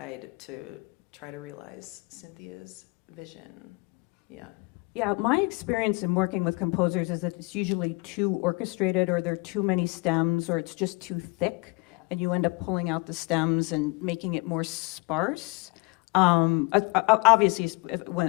to try to realize Cynthia's vision. Yeah. Yeah, my experience in working with composers is that it's usually too orchestrated, or there are too many stems, or it's just too thick, and you end up pulling out the stems and making it more sparse. Obviously,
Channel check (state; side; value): quieter; right; 27.3 dB